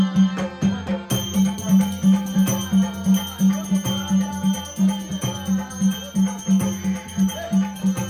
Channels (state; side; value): identical; both; correlation 1.00